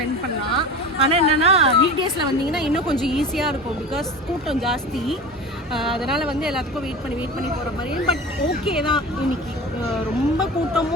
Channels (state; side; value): normal; both; correlation 0.32